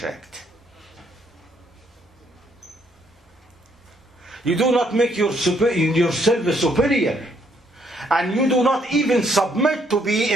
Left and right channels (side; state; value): both; normal; correlation 0.70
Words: You do not make yourself superior, and you do not even submit to be